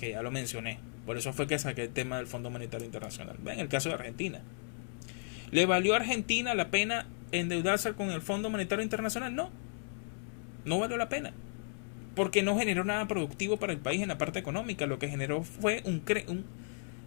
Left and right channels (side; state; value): right; silent; digital silence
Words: ya lo mencioné, por eso fue que saqué el tema del Fondo Monetario Internacional. Vean el caso de Argentina. ¿Le valió a Argentina la pena endeudarse con el Fondo Monetario Internacional? No, no valió la pena, porque no generó nada productivo para el país en la parte económica. Lo que generó fue